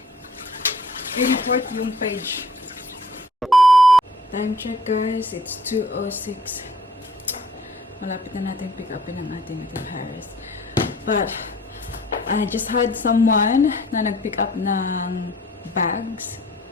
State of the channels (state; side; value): normal; both; correlation 0.55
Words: i-report yung page. Time check guys, it's 2:06. Malapit na natin pick upin ang ating Paris. But, I just had someone na nag-pick up ng bags.